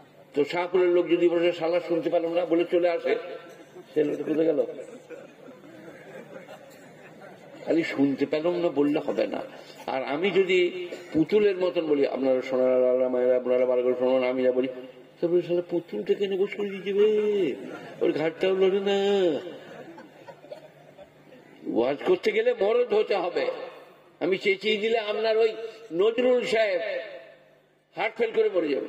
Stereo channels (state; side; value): identical; both; correlation 1.00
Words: তো শাহপুরের লোক যদি বসে শালা শুনতে পেলাম না বলে চলে আসে, সে লোকটা কোথায় গেল? খালি শুনতে পেলাম না বললে হবে না। আর আমি যদি পুতুলের মতন বলি, আপনারা সোনারা মায়েরা আপনারা বার করে শোনান, আমি যা বলি, তারপরে শালা পুতুলটা কেন বসে দিয়ে যাবে, ওর ঘাটটাও লড়ে না। ওয়াজ করতে গেলে মরদ হতে হবে। আমি চেঁচিয়ে দিলে আপনার ওই নজরুল সাহেব হার্ট ফেল করে মরে